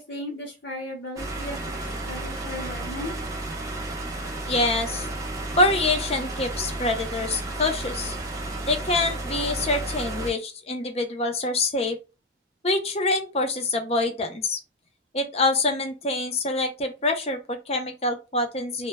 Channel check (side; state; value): both; normal; correlation 0.06